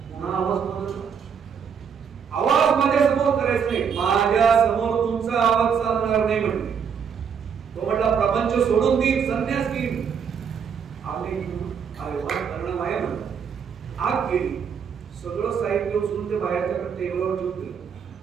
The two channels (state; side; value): quieter; left; 7.0 dB